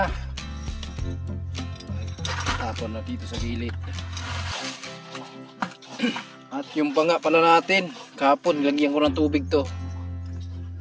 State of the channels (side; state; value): both; identical; correlation 1.00